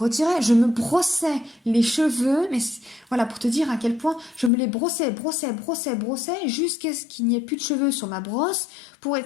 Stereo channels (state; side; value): drops out; right; at 4.5 s